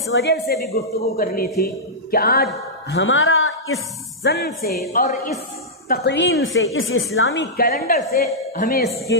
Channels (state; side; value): normal; both; correlation -0.11